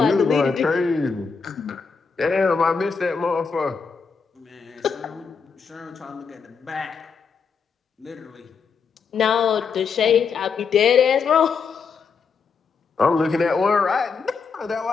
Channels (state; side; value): quieter; right; 5.6 dB